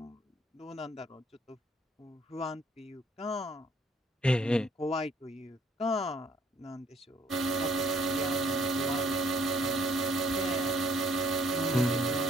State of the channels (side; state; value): both; normal; correlation 0.63